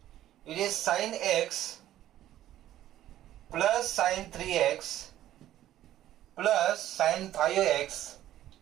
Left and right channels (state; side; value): quieter; left; 13.0 dB